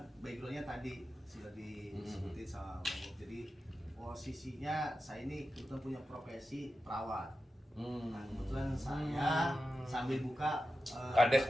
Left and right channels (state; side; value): normal; both; correlation 0.92